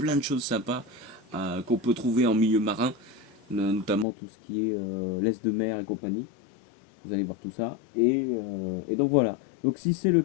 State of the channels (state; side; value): drops out; right; at 4.0 s